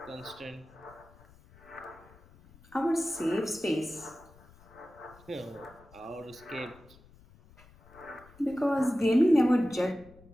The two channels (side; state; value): left; noise; rumble, 25 dB below the sound